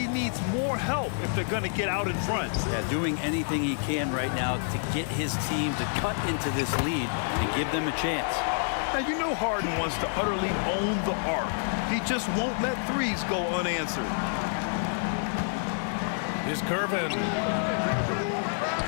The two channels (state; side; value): silent; right; digital silence